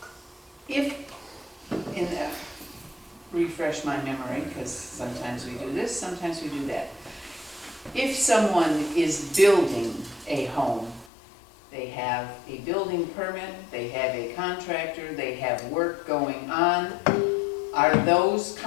If, refresh my memory, because sometimes we do this, sometimes we do that. If someone is building a home, they have a building permit, they have a contractor, they have work going on, are those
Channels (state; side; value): drops out; right; at 11.1 s